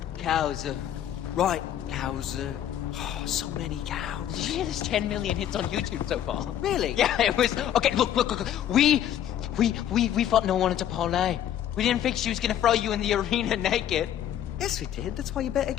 Cows, Right, cows, oh, so many cows. Did you hear there's 10 million hits on YouTube so far? Really? Yeah, it was... Okay, look. We thought no one wanted to parlay. We didn't think she was gonna throw you in the arena naked. Yes, we did. That's why you bet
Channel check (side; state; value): right; quieter; 10.8 dB